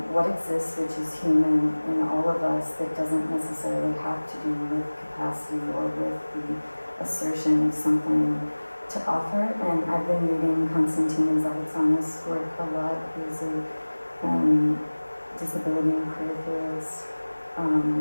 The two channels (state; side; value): inverted; both; correlation -1.00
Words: what exists, which is human in all of us, that doesn't necessarily have to do with capacity or with the assertion of something to offer. And I've been reading Konstantina Zavitsana's work a lot, who's a disability and queer theorist.